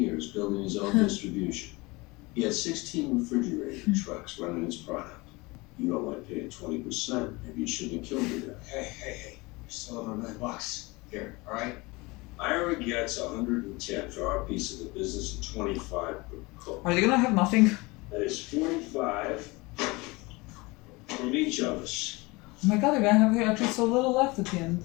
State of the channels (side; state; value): right; quieter; 24.2 dB